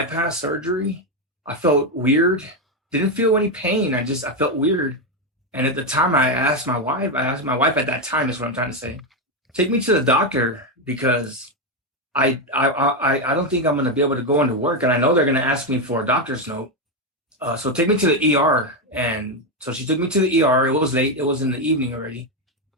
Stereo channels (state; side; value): normal; both; correlation 0.07